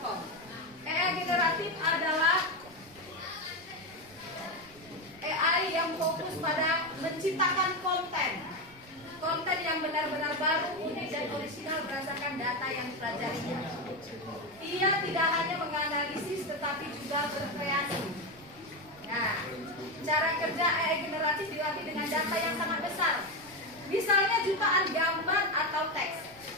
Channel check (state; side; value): noise; right; rumble, 25 dB below the sound